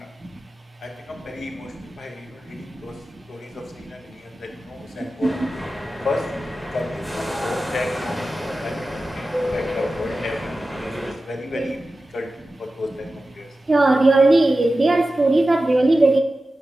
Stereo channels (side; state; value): both; normal; correlation 0.94